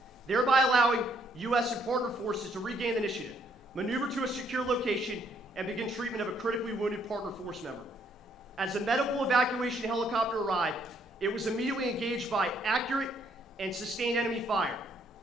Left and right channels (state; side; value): normal; both; correlation 0.69